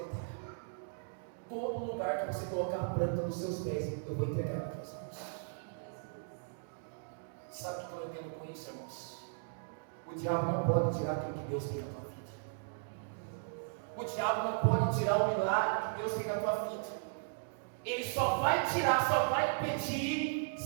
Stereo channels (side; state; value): left; silent; digital silence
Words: todo lugar que você colocar a planta nos seus pés, eu vou entregar para você. Sabe o que eu entendo com isso, irmãos? O diabo não pode tirar aquilo que Deus tem na tua vida. O diabo não pode tirar o milagre que Deus tem na tua vida. Ele só vai tirar, só vai impedir